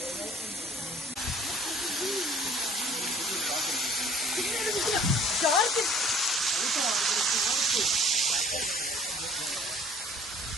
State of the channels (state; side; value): normal; both; correlation 0.53